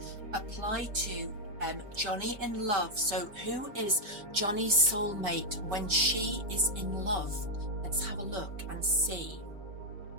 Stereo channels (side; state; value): left; late; 4.8 ms